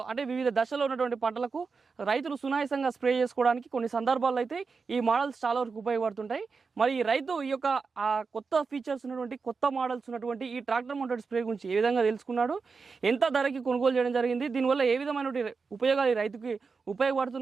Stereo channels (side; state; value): left; quieter; 4.8 dB